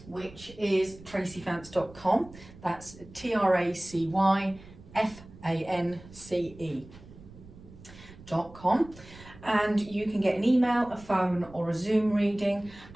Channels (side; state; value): right; noise; rumble, 20 dB below the sound